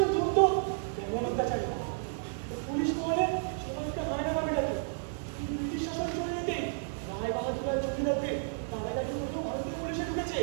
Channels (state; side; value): silent; left; 56 dB below the other